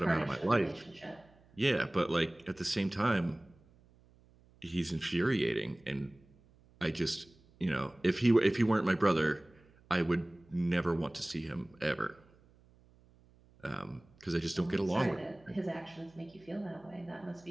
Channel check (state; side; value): noise; right; hum, 29 dB below the sound